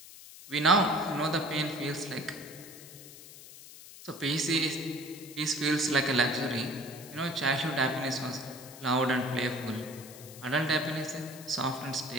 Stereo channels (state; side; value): noise; left; hiss, 16 dB below the sound